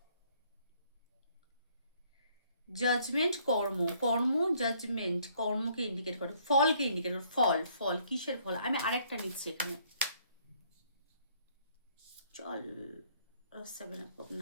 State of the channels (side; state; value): both; inverted; correlation -0.64